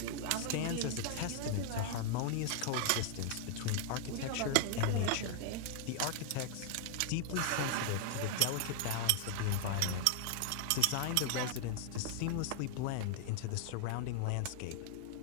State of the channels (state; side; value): different; both; correlation 0.00